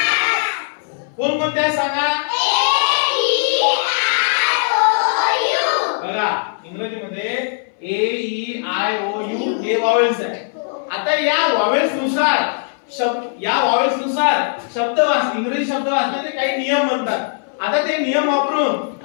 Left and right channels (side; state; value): right; silent; 61 dB below the other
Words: कोण कोणते आहेत सांगा? बघा इंग्रजीमध्ये ए ई आय ओ यू हे व्हॉवेल्स आहे. आता या व्हॉवेल्स नुसार शब्द इंग्रजी शब्द वाचण्याचे काही नियम म्हणतात. आता ते नियम वापरून